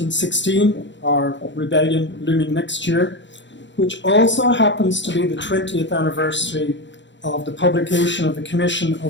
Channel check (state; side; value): late; right; 0.53 ms